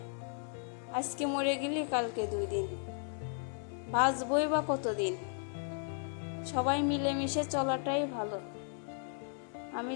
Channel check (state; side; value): silent; right; 54 dB below the other